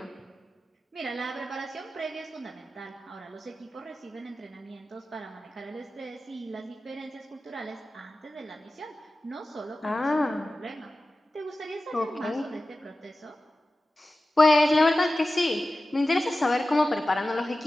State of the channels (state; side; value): normal; both; correlation 0.95